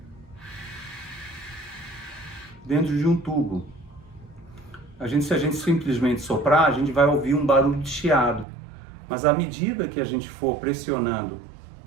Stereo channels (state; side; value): drops out; left; at 8.5 s